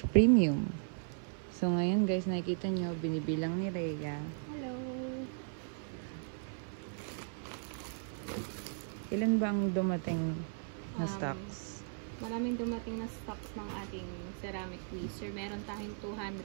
So ngayon guys, nakikita nyo, binibilang ni Rhea. Hello! Ilan ba ang dumating na stocks? Maraming dumating na stocks ng ating ceramic tweezer. Meron tayong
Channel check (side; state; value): left; silent; 53 dB below the other